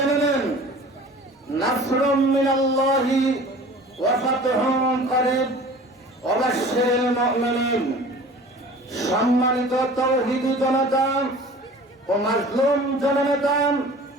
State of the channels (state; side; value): normal; both; correlation 0.43